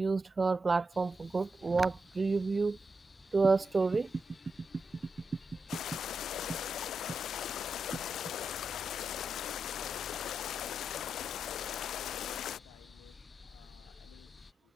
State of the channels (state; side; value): normal; both; correlation 0.86